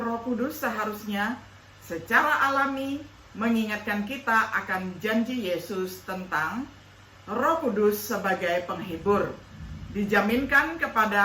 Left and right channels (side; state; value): both; identical; correlation 1.00